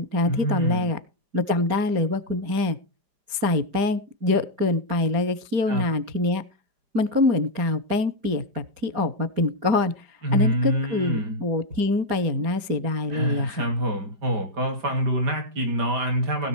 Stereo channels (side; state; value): left; late; 4.9 ms